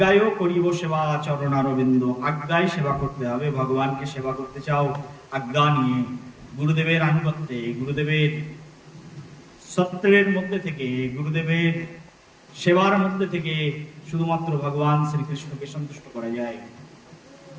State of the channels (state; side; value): identical; both; correlation 1.00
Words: করিব সেবা চরণারবিন্দ। আজ্ঞায় সেবা করতে হবে। ভগবানকে সেবা করতে চাও আজ্ঞা নিয়ে, গুরুদেবের আনুগত্যে, গুরুদেবের সত্রের মধ্যে থেকে, গুরুদেবের সেবার মধ্যে থেকে শুধুমাত্র ভগবান শ্রীকৃষ্ণকে সন্তুষ্ট করা যায়।